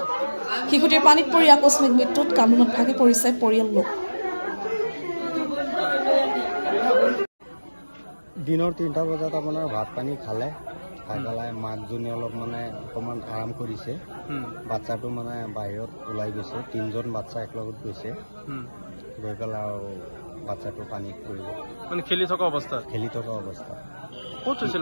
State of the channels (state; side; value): inverted; both; correlation -1.00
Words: শিশুটিৰ পানীত পৰি আকস্মিক মৃত্যুত কান্দোনত ভাগি পৰিছে পৰিয়াল লোক দিনৰ 3টা বজাত আপোনাৰ ভাত পানী খালে খাই মাকজনী অলপ মানে অকণমান আৰাম কৰিছে বাচ্চাটো মানে বাহিৰত ওলাই গৈছে 3জন বাচ্চা একলগত গৈছে গৈ পেলাই আৰু বাচ্চাটো পানীত পৰিল মানে খেলি থকা অৱস্থা ক'ত হৈছিল